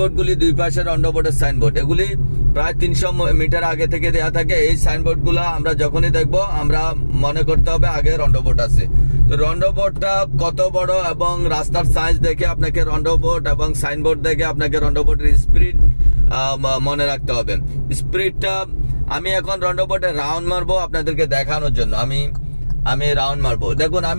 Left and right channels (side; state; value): both; inverted; correlation -1.00